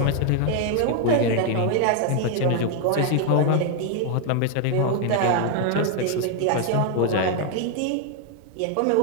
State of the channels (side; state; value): both; different; correlation 0.00